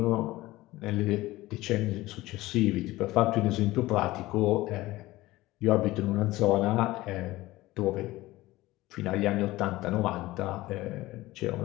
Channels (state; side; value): quieter; right; 18.1 dB